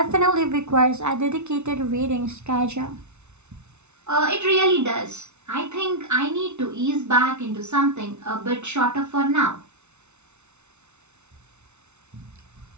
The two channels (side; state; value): left; late; 0.82 ms